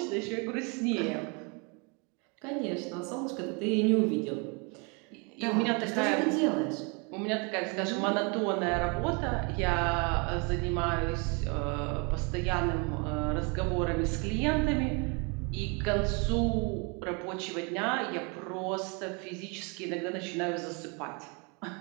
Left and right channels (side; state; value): left; quieter; 32.5 dB